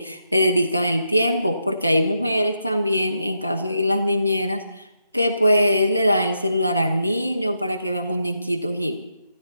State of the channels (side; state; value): both; inverted; correlation -0.82